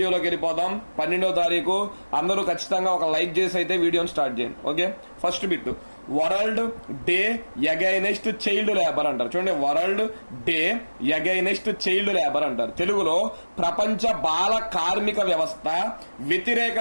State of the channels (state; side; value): inverted; both; correlation -1.00